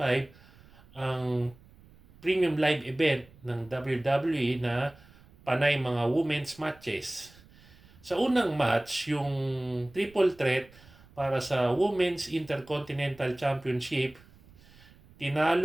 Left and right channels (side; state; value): right; noise; rumble, 25 dB below the sound